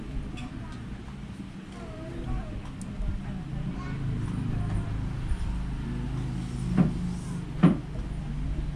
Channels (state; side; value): identical; both; correlation 1.00